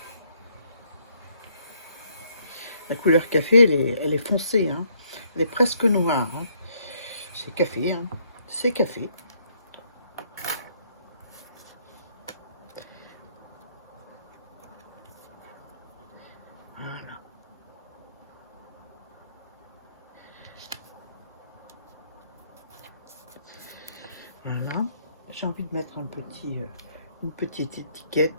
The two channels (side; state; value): both; inverted; correlation -0.69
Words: La couleur café, elle est foncée. Hein. Elle est presque noire. Hein. C'est café. Hein. C'est café. Voilà. Voilà. J'ai envie de mettre une petite